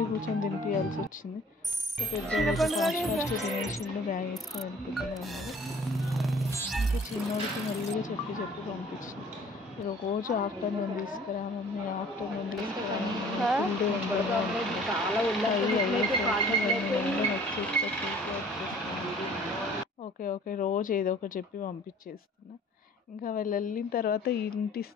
కూర్చొని తినిపించాల్సి వచ్చింది. ఇంకా పెద్ద ఫాస్ట్ తినేసిండు, బ్యాగ్ వేసుకొని వెళ్ళిపోతూనే ఉన్నారు. ఇంకా చిన్నోడికి మెల్లిగా చెప్పి పంపించిన. రోజు ఆఫ్టర్నూన్ తీసుకురా మమ్మీ, ఆఫ్టర్నూన్ తీసుకురా ఓకే రోజు ఏదో ఒకటి చెప్పి పంపించేస్తున్నా. ఇంకా వాళ్ళు వెళ్ళిన తర్వాత ఇంటి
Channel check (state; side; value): normal; both; correlation 0.52